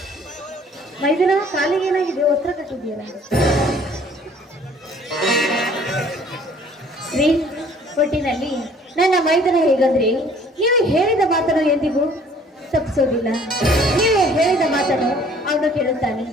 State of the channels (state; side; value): normal; both; correlation 0.55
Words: ಮೈದಿನ ಕಾಲಿಗೆ ಏನಾಗಿದೆ? ಒತ್ತಡ ಕಟ್ಟಿದ್ದೀರಾ? ರೀ, ಒಟ್ಟಿನಲ್ಲಿ ನನ್ನ ಮೈದನ ಹೇಗಂದ್ರೆ ನೀವು ಹೇಳಿದ ಮಾತನ್ನು ಎಂದಿಗೂ ತಪ್ಪಿಸೋದಿಲ್ಲ. ನೀವು ಹೇಳಿದ ಮಾತನ್ನು ಅವನು ಕೇಳುತ್ತಾನೆ.